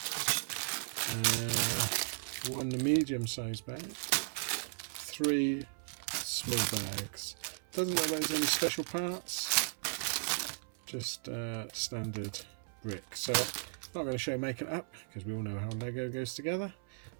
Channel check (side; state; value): left; silent; 54 dB below the other